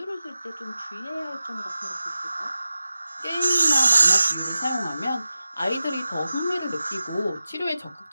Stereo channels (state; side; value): inverted; both; correlation -0.94